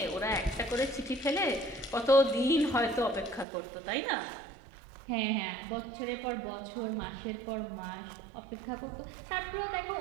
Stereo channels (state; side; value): drops out; left; at 3.5 s